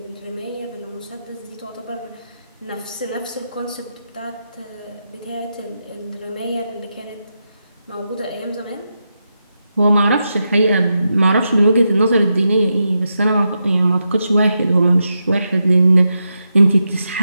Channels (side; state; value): both; inverted; correlation -0.86